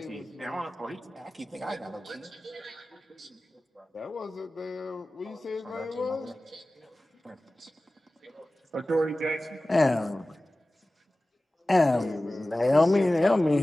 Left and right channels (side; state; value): both; normal; correlation 0.96